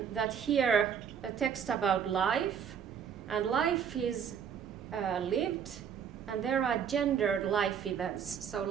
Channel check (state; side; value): quieter; left; 7.8 dB